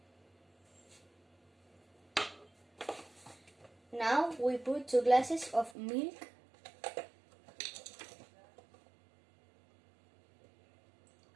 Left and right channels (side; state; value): left; drops out; at 5.8 s